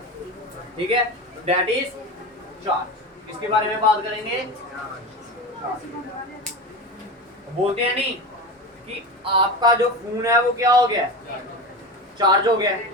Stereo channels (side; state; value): both; normal; correlation 0.25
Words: ठीक है, दैट इज चार्ज। इसके बारे में बात करेंगे। बोलते हैं नहीं कि आपका जो फोन है वो क्या हो गया, चार्ज हो गया।